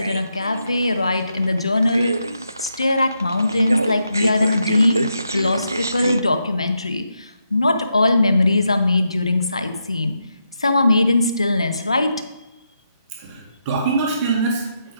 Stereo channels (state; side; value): inverted; both; correlation -0.82